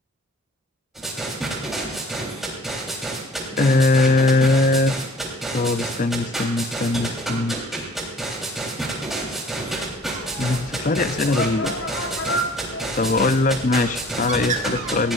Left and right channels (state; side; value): normal; both; correlation 0.51